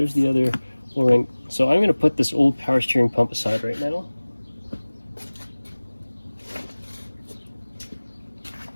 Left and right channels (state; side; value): inverted; both; correlation -1.00